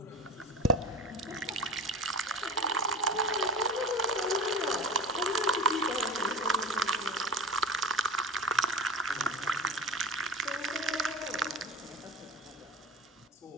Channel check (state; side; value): normal; both; correlation 0.31